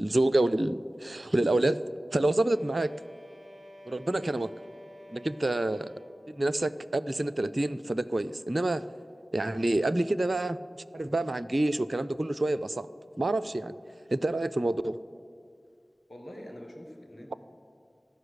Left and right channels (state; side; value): normal; both; correlation 0.97